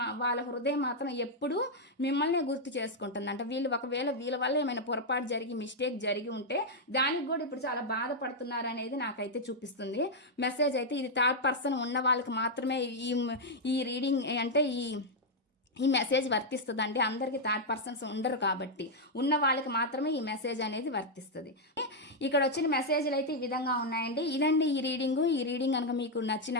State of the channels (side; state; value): both; normal; correlation -0.02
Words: వాళ్ళ హృదయం మాత్రం ఎప్పుడూ మిమ్మల్ని గుర్తు చేసుకుంటుంది అంట. ఒకవేళ వీళ్ళ వల్ల ఏమైనా పొరపాటు జరిగి మిస్టేక్ జరిగి ఉంటే దానికి కూడా ఇప్పుడు చాలా బాధపడుతున్నారు అనేది నాకైతే చూపిస్తుంది మెసేజ్ అయితే. ఇది థర్డ్ పర్సన్ ఉన్న వాళ్ళకి మాత్రమే ఈ రీడింగ్ అంటే ఈ మెసేజ్ వర్తిస్తుందండి. అందరికీ థర్డ్ పర్సన్స్ ఉండరు కాబట్టి ఉన్న వాళ్ళకి మాత్రమే ఈ మెసేజ్ అనేది వర్తిస్తుంది. ఇక్కడ వచ్చిన మెసేజ్లు అయితే ఈ విధంగా ఉన్నాయండి. ఇదండి ఈ రీడింగ్ కనుక మీకు